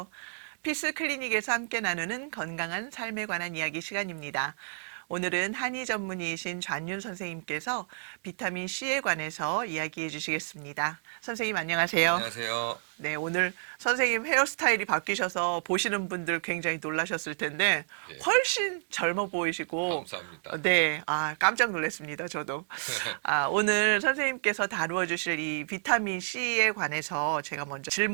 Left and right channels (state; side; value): silent; left; digital silence